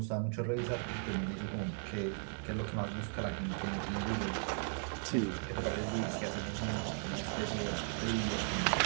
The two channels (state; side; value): silent; left; 53 dB below the other